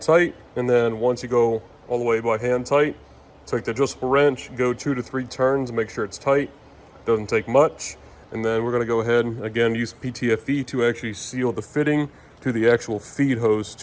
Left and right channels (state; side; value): identical; both; correlation 1.00